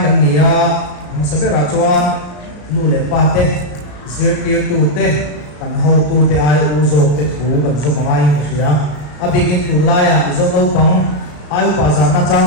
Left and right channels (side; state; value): right; late; 34 ms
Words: kan nia sẽ biết là chuan nu le pa te zir tir tu te kan ho tu te ai u zo te thu kan zo mai sửa abigin tu la ya zo no pang ai pa za na